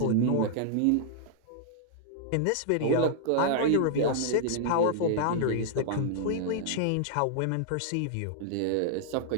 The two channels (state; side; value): different; both; correlation -0.01